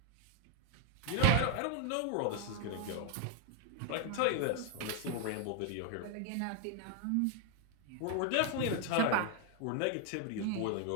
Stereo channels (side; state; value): both; different; correlation 0.01